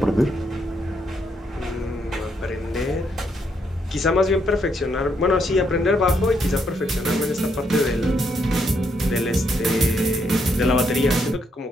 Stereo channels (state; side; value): normal; both; correlation 0.76